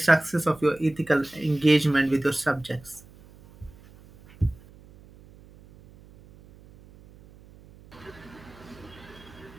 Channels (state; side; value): noise; right; hum, 23 dB below the sound